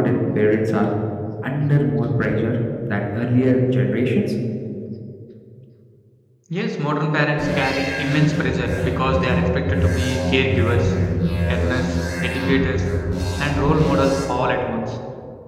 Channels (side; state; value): both; identical; correlation 1.00